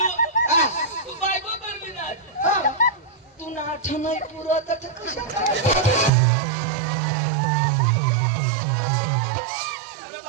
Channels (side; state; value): left; drops out; at 6.1 s